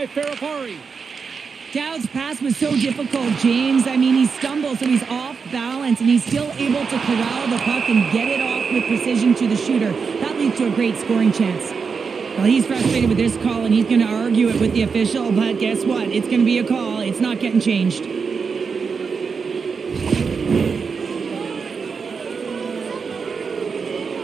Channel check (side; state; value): left; quieter; 5.5 dB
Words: Faravari. Dowd's pass was so difficult, James. I mean, he stumbles, so he's off balance, and he's still able to corral the puck and get it off with precision to the shooter. That leads to a great scoring chance. Well, he's frustrated with this call, and he's going to argue it with the official, but guess what? It's going to be a call. It's not getting changed.